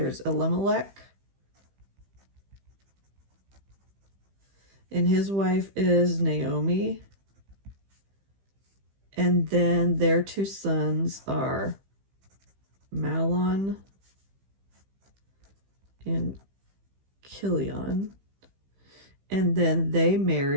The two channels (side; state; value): left; late; 15 ms